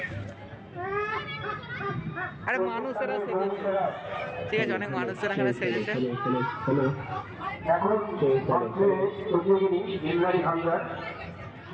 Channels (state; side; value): identical; both; correlation 1.00